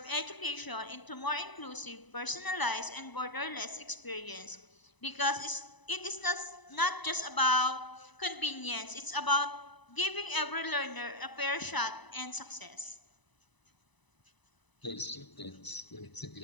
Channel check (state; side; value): late; right; 1.0 ms